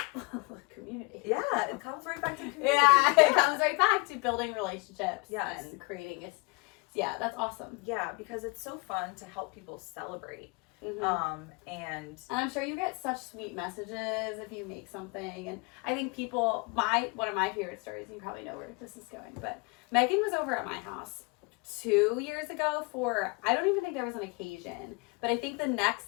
community. Yeah, it comes right back to community. Yeah, it comes right back to building relationships and creating it. Yeah, that's awesome. Yeah, because it's so fun to help people celebrate. Mm-hmm. And I'm sure you get such sweet messages if you make something. And I think people, one of my favorite stories, you probably know where this is going, but Megan was over at my house 2 years ago for, I don't even think there was an occasion, but I think the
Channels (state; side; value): quieter; right; 28.9 dB